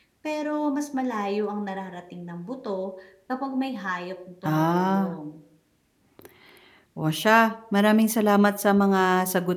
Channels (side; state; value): both; identical; correlation 1.00